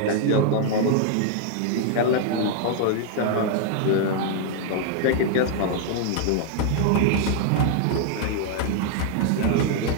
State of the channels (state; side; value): different; both; correlation 0.00